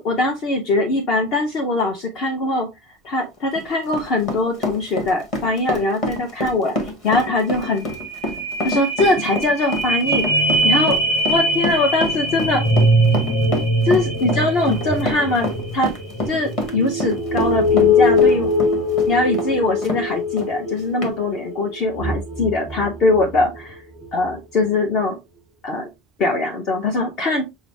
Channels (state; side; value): normal; both; correlation 0.31